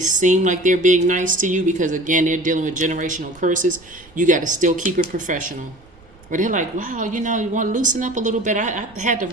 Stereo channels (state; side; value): noise; right; rumble, 26 dB below the sound